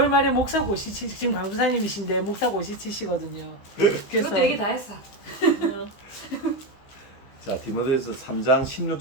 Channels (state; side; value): late; right; 15 ms